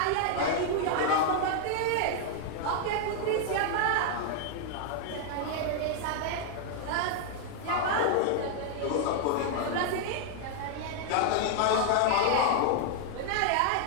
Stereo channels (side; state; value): both; different; correlation 0.00